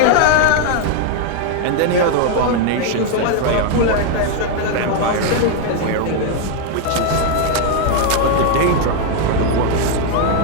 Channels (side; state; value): both; different; correlation 0.00